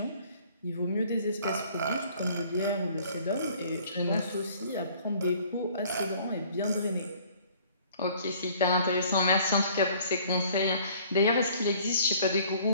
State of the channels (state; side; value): inverted; both; correlation -0.55